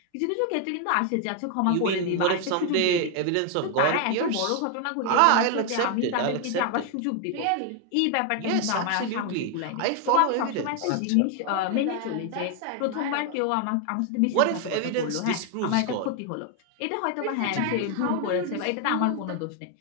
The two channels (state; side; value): different; both; correlation 0.01